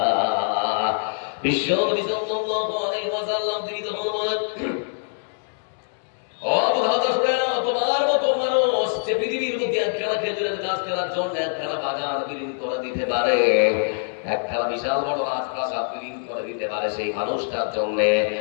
বিশ্ব নবী সাল্লাল্লাহু আলাইহি ওয়াসাল্লাম তিনি তখন বলেন, ও মুহাম্মদ শুনে নাও, তোমার মতো মানুষ যে পৃথিবীর মধ্যে একখানা খেজুরের গাছ কেনার জন্য একখানা বাগান বিলীন করে দিতে পারে, একখানা বিশাল বড় রাজপ্রাসাদ বিলীন করে দিতে পারে, সেই মানুষটার জন্য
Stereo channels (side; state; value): right; silent; digital silence